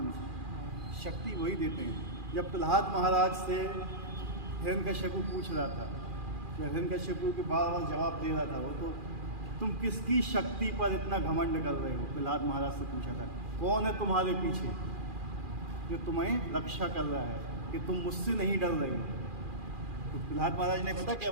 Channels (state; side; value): late; left; 2.4 ms